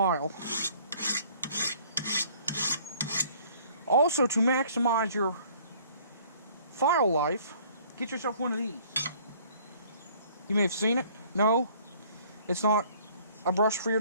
Also, to maximize your file life, get yourself one of these. You may have seen it. No, it's not a brush for your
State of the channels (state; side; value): inverted; both; correlation -0.56